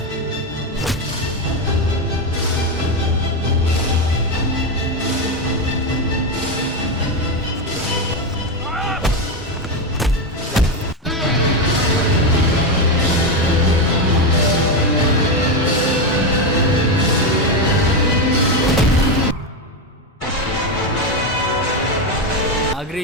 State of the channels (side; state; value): both; normal; correlation 0.10